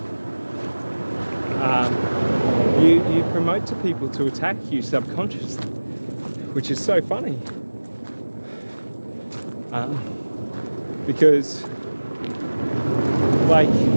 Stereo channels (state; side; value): inverted; both; correlation -1.00